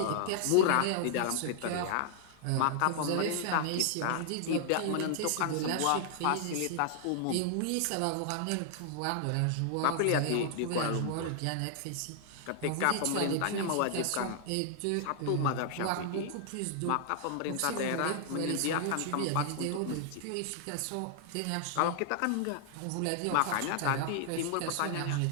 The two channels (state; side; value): different; both; correlation -0.01